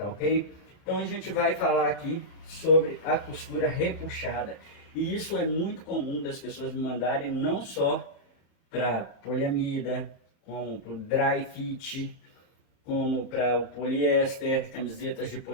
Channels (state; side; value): late; right; 30 ms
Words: ok? Então a gente vai falar aqui sobre a costura repuxada. E isso é muito comum das pessoas me mandarem, não só para poliamida, como para o dry fit, como para o poliéster, camisetas de